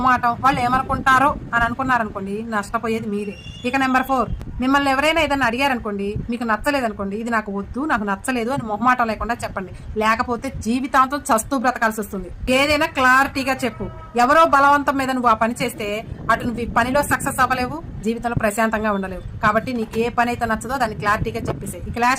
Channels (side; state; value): both; identical; correlation 1.00